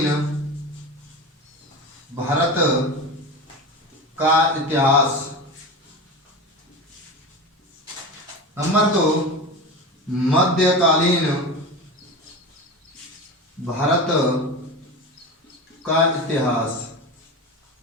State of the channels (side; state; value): both; normal; correlation 0.26